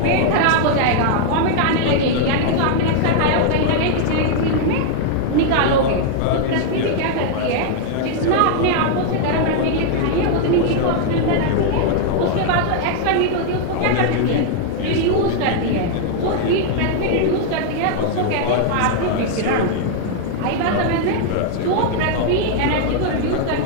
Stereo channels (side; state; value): both; different; correlation 0.00